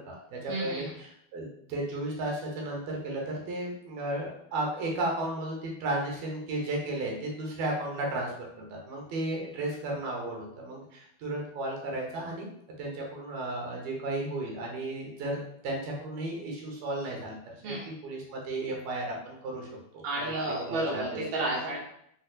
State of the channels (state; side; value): late; left; 12 ms